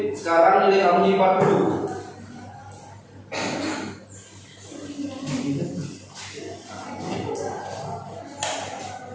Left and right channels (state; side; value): identical; both; correlation 1.00